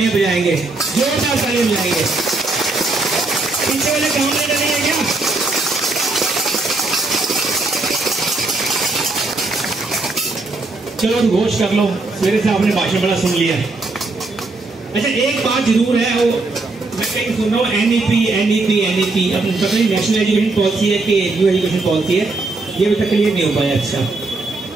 बजाएंगे, जोरदार तालियां बजाएंगे। पीछे वाले कामरेड नहीं है क्या? चलो घोष कर लो, मेरे से आपने भाषण बड़ा सुन लिया। अच्छा एक बात जरूर है, वो मैं कहीं सुन रहा हूँ एनईपी अब पता नहीं नेशनल एजुकेशन पॉलिसी है कि न्यू एजुकेशन पॉलिसी है, ये अभी तक क्लियर नहीं हो पाया। अच्छा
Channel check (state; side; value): quieter; left; 3.3 dB